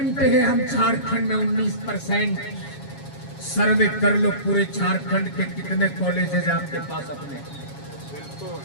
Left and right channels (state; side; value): late; right; 7.3 ms